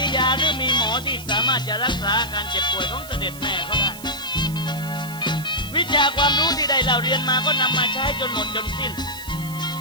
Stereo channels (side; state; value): right; noise; hiss, 15 dB below the sound